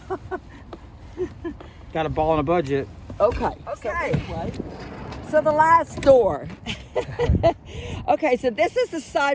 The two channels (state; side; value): identical; both; correlation 1.00